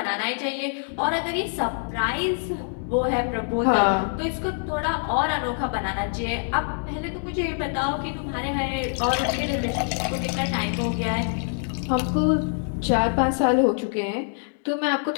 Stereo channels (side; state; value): right; silent; 62 dB below the other